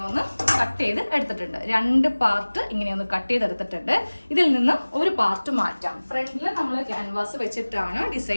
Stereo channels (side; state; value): both; inverted; correlation -1.00